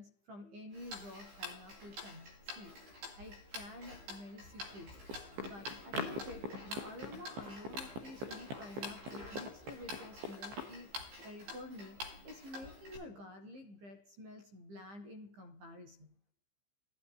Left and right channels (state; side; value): late; left; 15 ms